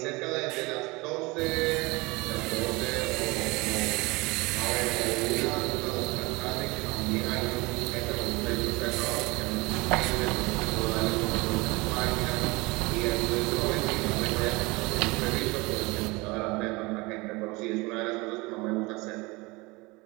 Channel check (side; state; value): left; quieter; 24.3 dB